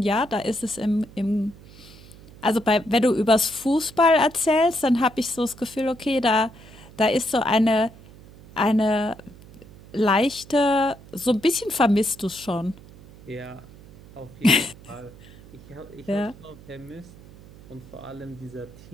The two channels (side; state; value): right; noise; hum, 21 dB below the sound